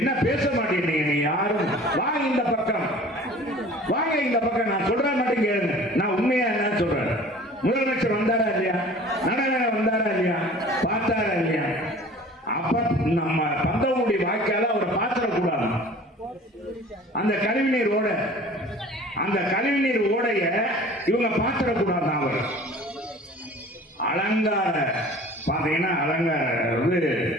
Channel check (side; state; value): both; normal; correlation 0.45